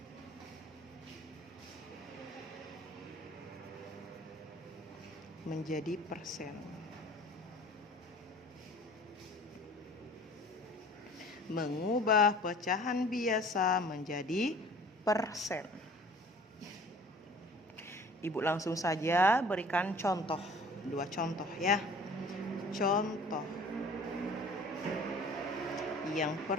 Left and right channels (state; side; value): normal; both; correlation 0.47